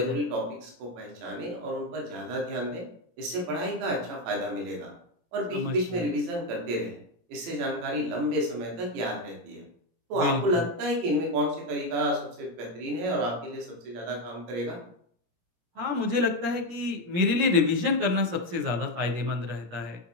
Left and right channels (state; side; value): late; left; 17 ms